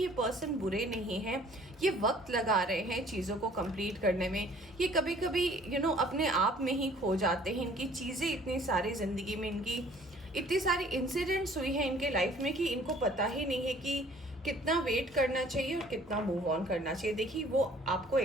ये पर्सन बुरे नहीं हैं, ये वक्त लगा रहे हैं चीज़ों को कंप्लीट करने में। ये कभी कभी अपने आप में ही खो जाते हैं, इनकी चीज़ें इतनी सारी ज़िंदगी में, इनकी इतनी सारी इंसिडेंट्स हुई हैं इनके लाइफ में कि इनको पता ही नहीं है कि कितना वेट करना चाहिए और कितना मूव ऑन करना चाहिए। देखिए वो आपको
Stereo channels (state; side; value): normal; both; correlation 0.55